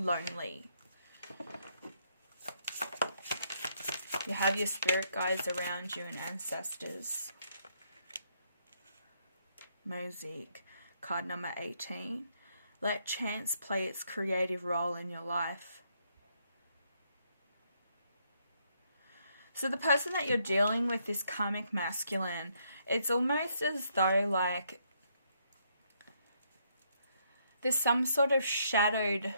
You have your spirit guides around you and ancestors. Mosaic, card number 18. Let chance play its creative role in your life. So the person that you're dealing with, this karmic masculine, it's almost as though like there's some sort of shadowed,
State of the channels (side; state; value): both; inverted; correlation -0.73